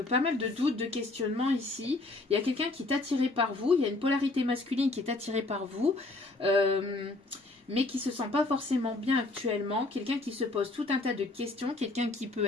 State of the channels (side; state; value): right; quieter; 3.0 dB